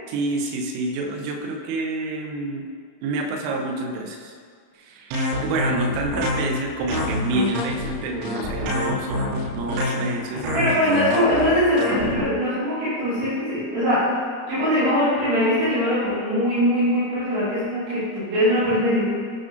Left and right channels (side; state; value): left; late; 34 ms